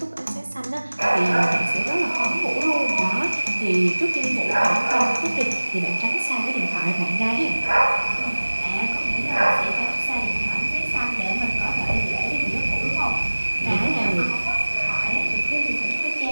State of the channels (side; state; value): both; inverted; correlation -1.00